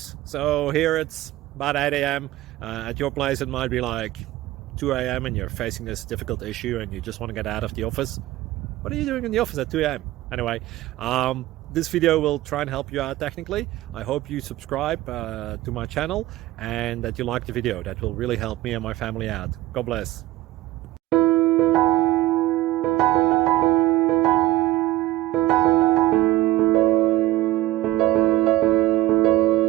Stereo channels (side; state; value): left; quieter; 16.6 dB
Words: So here it's about 8 a.m. At your place it might be like 2 a.m. and you're facing this difficult issue and you just want to get out of the office. What are you doing in the office at 2 a.m.? Anyway, this video will try and help you out technically. I hope you subscribe to my channel and that you like the video. That will really help me and my family out. God bless.